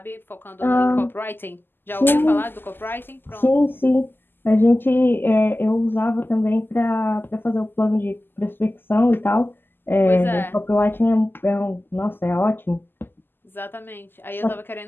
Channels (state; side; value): late; right; 0.096 ms